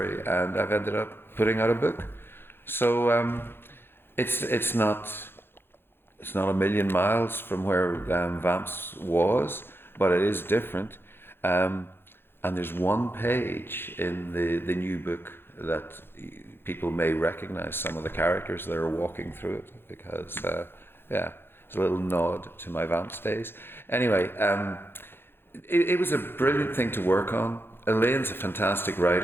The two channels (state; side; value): late; right; 0.11 ms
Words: and I've ended up putting out a book. So it's not a million miles from where Vamps was, but it is different. And there's one page in the new book that people may recognize some of the characters that are walking through it, because it's a little nod to my Vamps days. Anyway, it was a brilliant thing to work on. Elaine's a fantastic